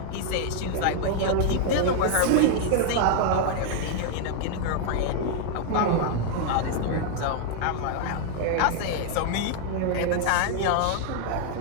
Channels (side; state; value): both; different; correlation 0.00